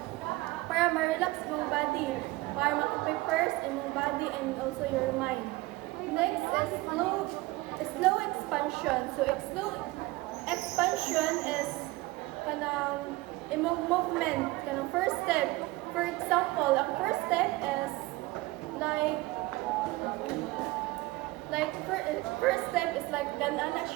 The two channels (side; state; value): left; quieter; 20.5 dB